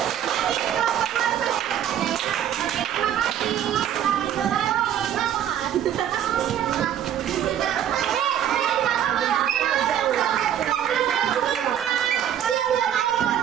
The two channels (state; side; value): quieter; left; 10.3 dB